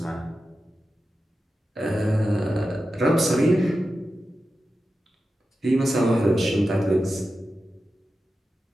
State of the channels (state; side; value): normal; both; correlation 0.92